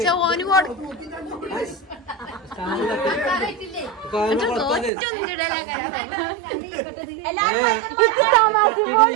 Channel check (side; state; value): left; drops out; at 4.9 s